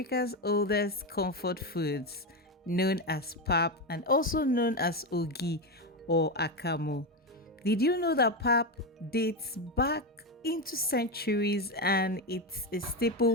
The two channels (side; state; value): both; normal; correlation 0.12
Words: oldest comfort foods, known as pap and also known as ogi or akamu. Did you know that pap dates back into centuries and it's a